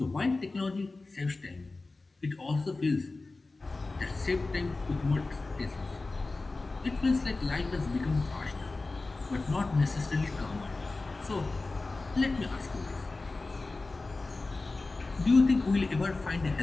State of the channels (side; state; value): right; quieter; 3.4 dB